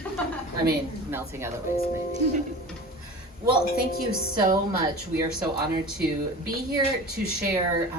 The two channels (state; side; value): normal; both; correlation 0.35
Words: I mean, melting other ways, maybe. Well, thank you so much. We are so honored to be here to share